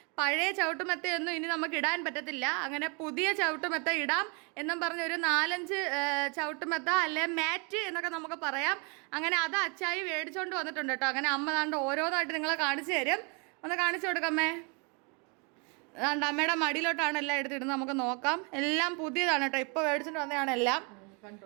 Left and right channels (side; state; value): left; quieter; 33.5 dB